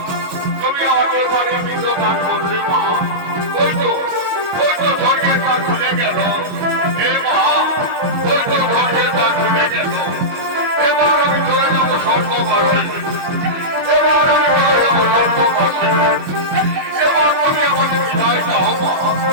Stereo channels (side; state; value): left; late; 22 ms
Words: তুমি আমাকে বাড়ির পিণ্ড দান করলে মা, ওই তো স্বর্গের দ্বার খুলে গেল। এ মা, ওই তো স্বর্গের দ্বার খুলে গেল। এবার আমি চলে যাবো স্বর্গবাসে, এবার আমি চলে যাবো স্বর্গবাসে। এবার তুমি আমাকে বিদায় দাও মা,